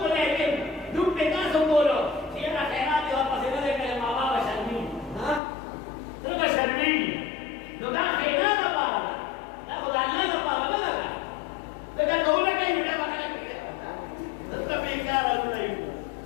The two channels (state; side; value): drops out; right; at 5.4 s